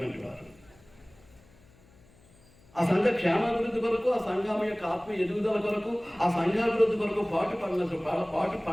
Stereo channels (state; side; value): noise; left; hum, 28 dB below the sound